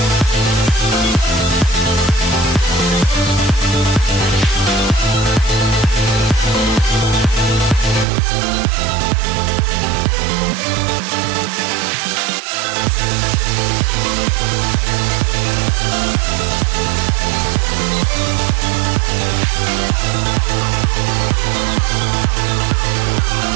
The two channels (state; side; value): drops out; left; at 8.1 s